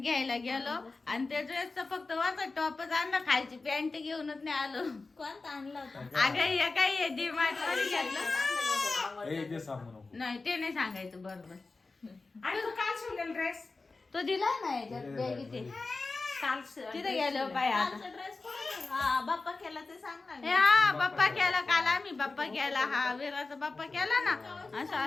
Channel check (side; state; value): right; quieter; 3.7 dB